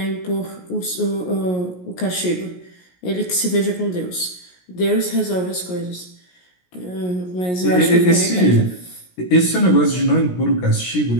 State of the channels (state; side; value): late; right; 17 ms